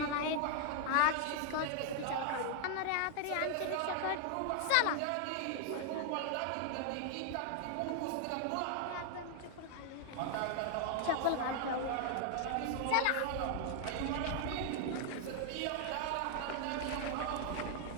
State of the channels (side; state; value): both; different; correlation 0.00